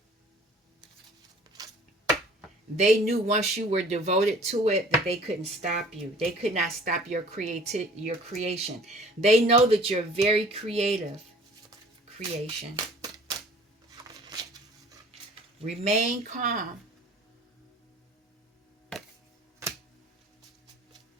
They knew once you were devoted to it that they couldn't stop you. They could not stop your creation. They know that you're very creative. Creation. Remain calm.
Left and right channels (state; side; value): normal; both; correlation 0.50